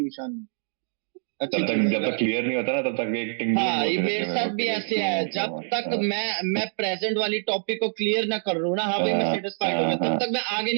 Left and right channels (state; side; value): silent; left; digital silence